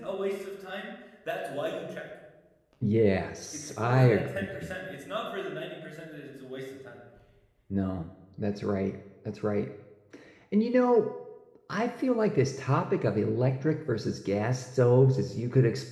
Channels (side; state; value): both; identical; correlation 1.00